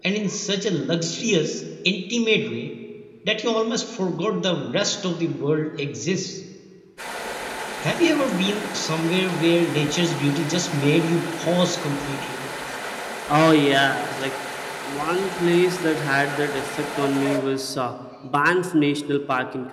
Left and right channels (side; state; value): both; identical; correlation 1.00